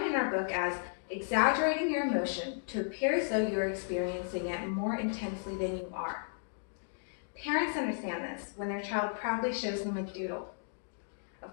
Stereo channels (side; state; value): right; silent; digital silence